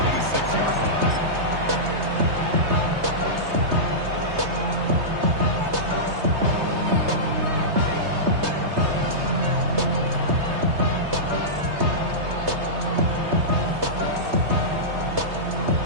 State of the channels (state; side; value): late; left; 3.2 ms